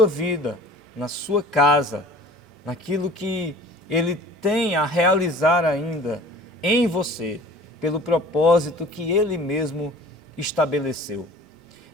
vida, na sua casa, naquilo que Ele tem a realizar ainda em você, pelo propósito que Ele mesmo estabeleceu.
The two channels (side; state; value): both; normal; correlation 0.46